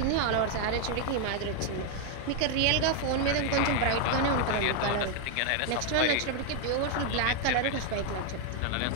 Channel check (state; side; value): different; both; correlation 0.00